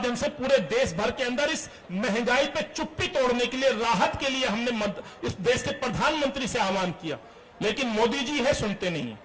से पूरे देश भर के अंदर इस महंगाई पे चुप्पी तोड़ने के लिए, राहत के लिए हमने इस देश के प्रधानमंत्री से आह्वान किया, लेकिन मोदी जी है सुनते नहीं है।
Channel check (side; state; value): both; identical; correlation 1.00